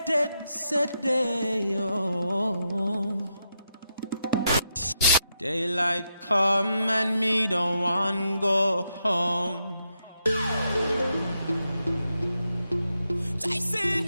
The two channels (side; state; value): both; inverted; correlation -0.83